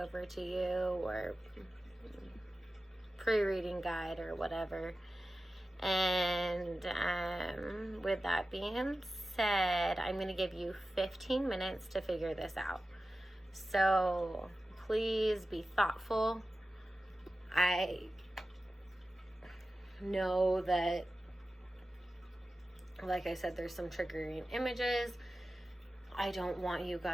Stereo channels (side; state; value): both; normal; correlation 0.94